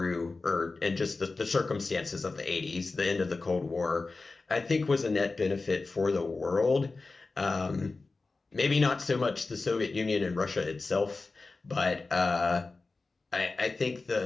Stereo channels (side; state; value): right; quieter; 3.7 dB